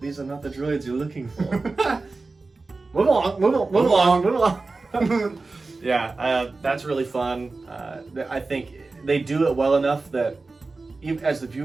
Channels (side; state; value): left; quieter; 3.7 dB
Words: are not the droids you're looking for. Move along. Yeah, that's really fun. I think they do it well enough that even as the